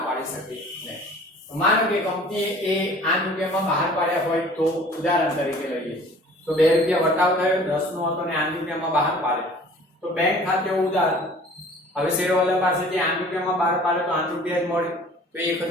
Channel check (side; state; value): both; normal; correlation 0.48